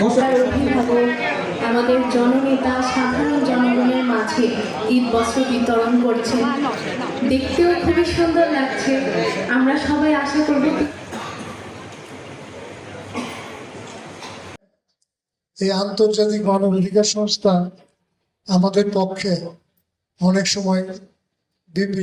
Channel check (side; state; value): both; identical; correlation 1.00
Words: অভিভাবক, আমাদের জননেতা সাধারণ জনগণের মাঝে ঈদ বস্ত্র বিতরণ করছেন, দেখতেও খুবই সুন্দর লাগছে। আমরা সবাই আশা করব এই আন্তর্জাতিক মানবাধিকার সংস্থা আমাদের পক্ষে অনেক সময়